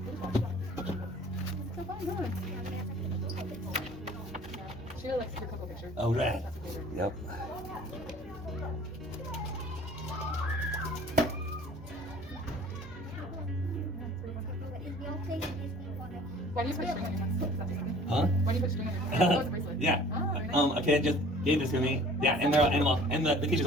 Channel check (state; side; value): normal; both; correlation 0.49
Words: Okay. So fun, huh? She likes your couple pictures. Oh, right. That's a favorite. Yep. Why do you put string on your hands? Is that something? Huh? Why do you put string on your hands? Oh, it's a bracelet. Yeah. Oh, very nice. A kid gave this to me. Yeah, and the teachers